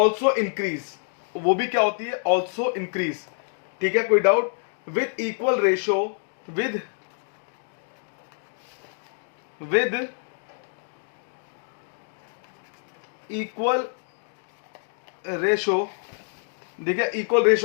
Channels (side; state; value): right; silent; digital silence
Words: इंक्रीज, वो भी क्या होती है, ऑल्सो इंक्रीज, ठीक है। कोई doubt? With equal ratio, with equal ratio, ठीक है, इक्वल